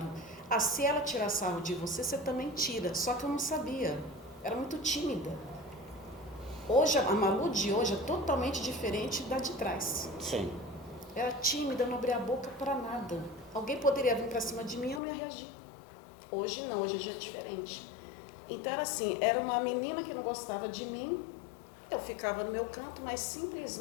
Se ela tirar sarro de você, você também tira. Só que eu não sabia. Era muito tímida. Hoje, a Malu de hoje é totalmente diferente da de trás. Sim. Era tímida, não abria a boca para nada. Alguém poderia vir para cima de mim e eu não ia reagir. Hoje não, hoje já é diferente. Então era assim, era uma menina que não gostava de mim, eu ficava no meu canto, mas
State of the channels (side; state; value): right; drops out; at 15.0 s